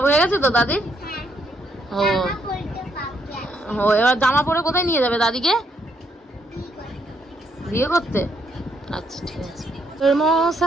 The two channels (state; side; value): normal; both; correlation 0.74